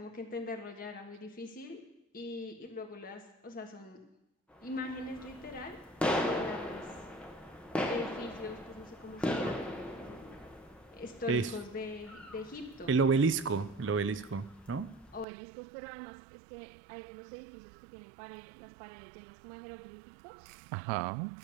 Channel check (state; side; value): drops out; left; at 15.2 s